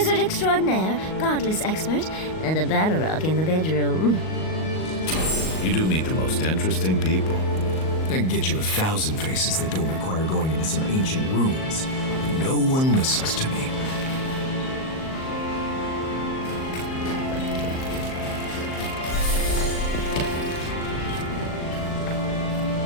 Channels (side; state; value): right; late; 38 ms